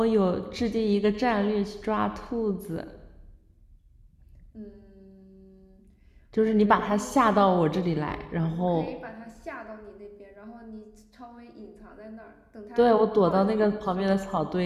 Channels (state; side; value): identical; both; correlation 1.00